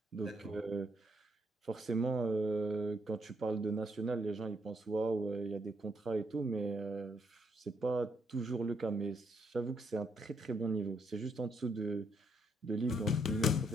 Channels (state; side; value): normal; both; correlation 0.74